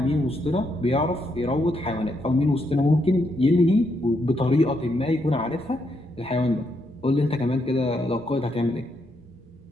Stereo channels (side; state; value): both; normal; correlation 0.78